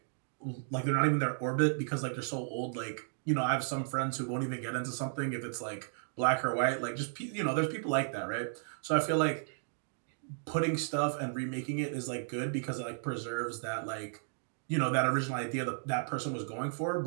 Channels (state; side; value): silent; left; digital silence